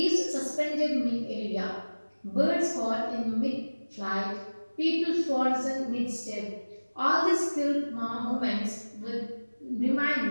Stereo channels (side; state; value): both; inverted; correlation -1.00